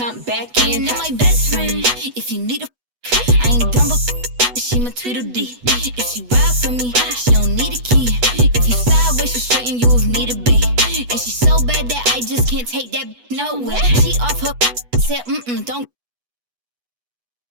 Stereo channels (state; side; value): late; left; 8.1 ms